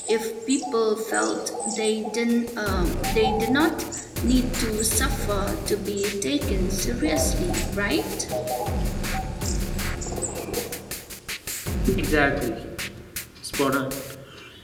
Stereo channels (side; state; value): both; identical; correlation 1.00